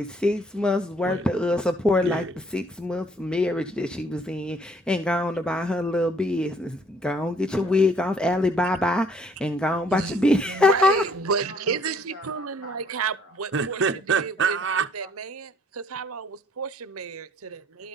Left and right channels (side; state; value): both; normal; correlation 0.62